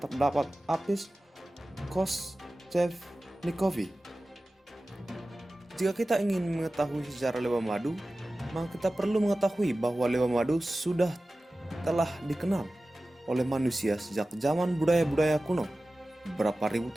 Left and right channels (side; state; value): both; normal; correlation 0.96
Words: Apis koschevnikovi. Jika kita ingin mengetahui sejarah lebah madu, maka kita perlu mengetahui bahwa lebah madu telah dikenal oleh manusia sejak zaman budaya-budaya kuno beberapa ribu